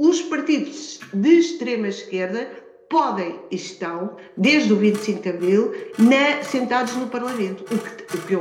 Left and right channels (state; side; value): identical; both; correlation 1.00